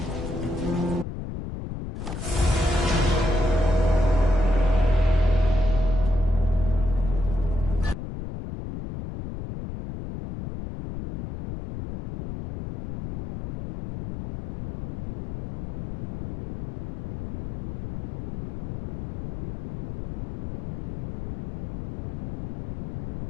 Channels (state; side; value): noise; left; rumble, 9 dB below the sound